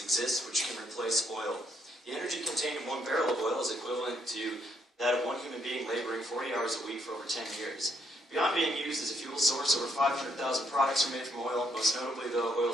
which can replace oil. The energy contained in 1 barrel of oil is equivalent to that of 1 human being laboring 40 hours a week for over 10 years. Beyond being used as a fuel source, over 500,000 products are made from oil. Most notably, though,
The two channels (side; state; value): both; normal; correlation 0.73